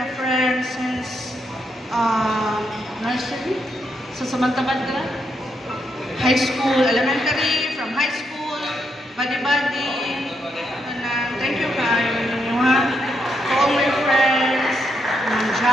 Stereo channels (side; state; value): both; normal; correlation 0.79